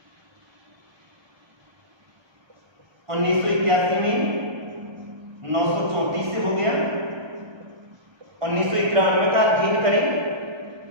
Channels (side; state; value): left; late; 1.3 ms